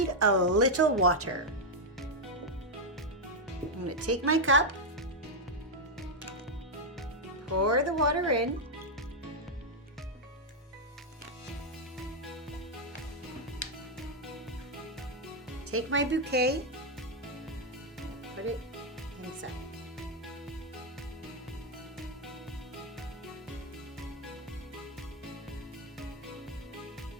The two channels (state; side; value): normal; both; correlation -0.01